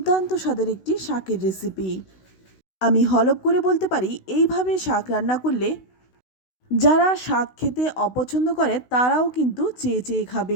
স্বাদের একটি শাকের রেসিপি। আমি হলপ করে বলতে পারি, এইভাবে শাক রান্না করলে যারা শাক খেতে অপছন্দ করে তারাও কিন্তু চেয়ে চেয়ে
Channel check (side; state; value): right; late; 16 ms